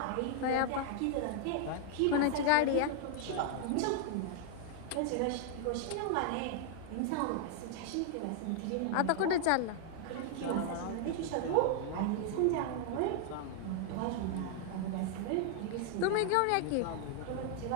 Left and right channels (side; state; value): both; different; correlation 0.00